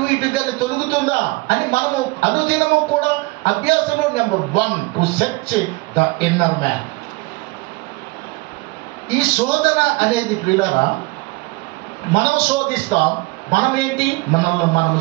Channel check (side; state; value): left; quieter; 24.4 dB